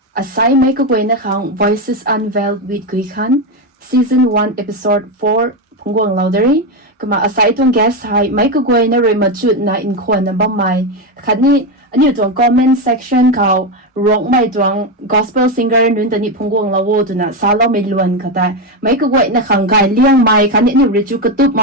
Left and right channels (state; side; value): normal; both; correlation 0.11